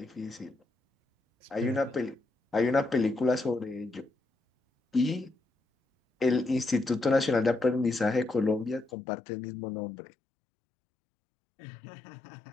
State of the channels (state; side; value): drops out; right; at 8.9 s